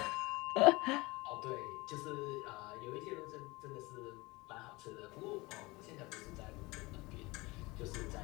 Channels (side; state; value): right; quieter; 23.1 dB